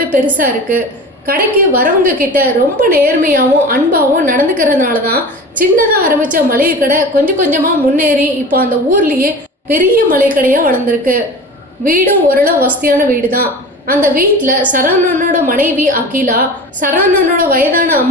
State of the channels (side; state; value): both; normal; correlation 0.35